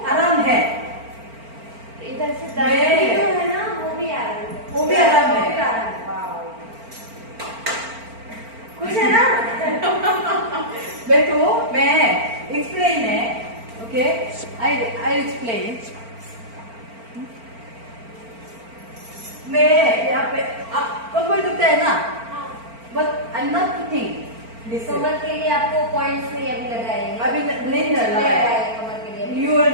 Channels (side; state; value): left; late; 4.4 ms